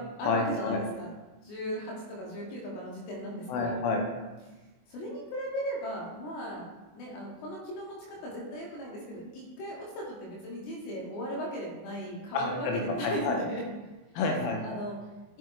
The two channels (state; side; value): late; right; 24 ms